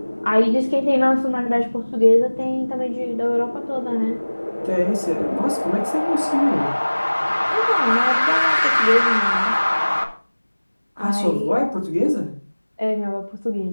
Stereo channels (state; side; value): inverted; both; correlation -1.00